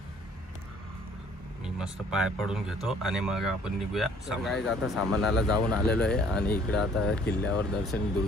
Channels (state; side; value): normal; both; correlation 0.58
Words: मी मस्त पाय पडून घेतो आणि मग आपण निघूया. गाईज आता सामानाला जाऊन आलेलो आहे आणि इकडं आता किल्ल्यावर दर्शन,